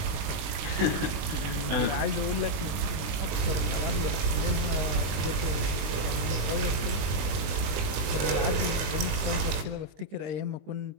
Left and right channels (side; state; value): left; late; 20 ms